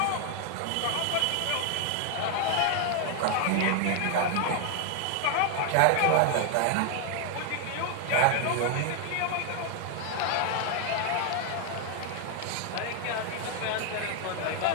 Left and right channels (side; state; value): both; different; correlation 0.00